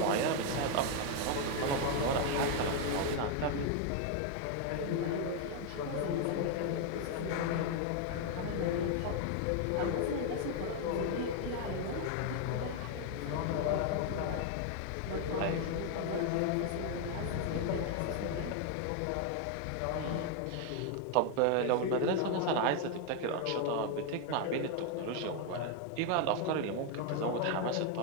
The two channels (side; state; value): both; different; correlation 0.01